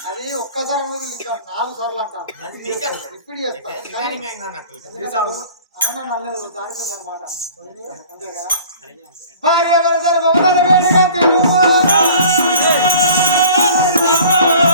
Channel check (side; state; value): both; inverted; correlation -0.46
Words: అది ఒక్కసారి అనేది ఇంకా 4 సార్లు అంటారు ఇప్పుడు చేస్తా నల్లదు దానికి అనమాట అంతే కదా భార్య